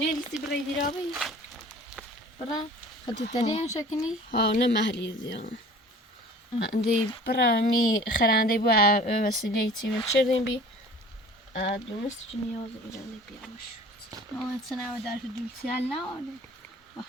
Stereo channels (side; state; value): both; normal; correlation 0.46